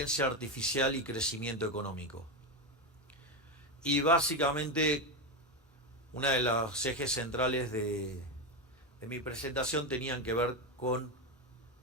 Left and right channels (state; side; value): normal; both; correlation 0.11